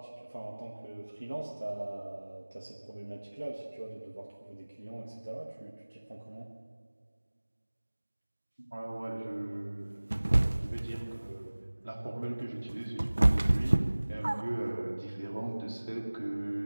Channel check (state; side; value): inverted; both; correlation -1.00